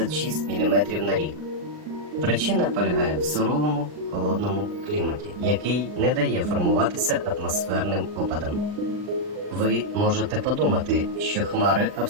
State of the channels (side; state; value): left; late; 39 ms